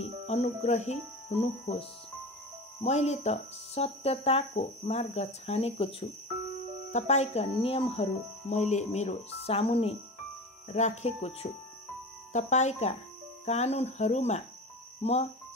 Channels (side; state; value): both; normal; correlation 0.30